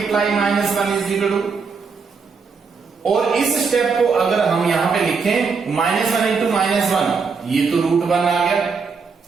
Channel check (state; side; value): quieter; left; 5.2 dB